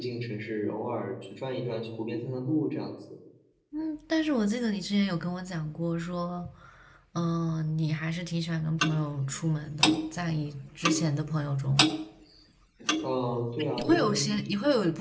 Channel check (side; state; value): both; identical; correlation 1.00